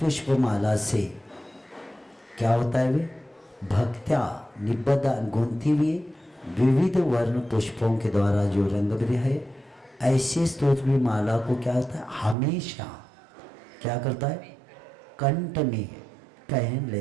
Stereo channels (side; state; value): left; drops out; at 12.4 s